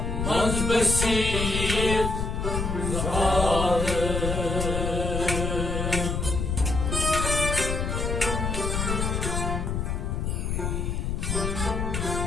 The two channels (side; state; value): left; noise; rumble, 1 dB below the sound